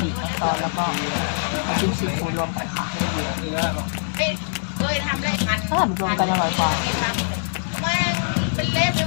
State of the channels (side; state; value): right; silent; digital silence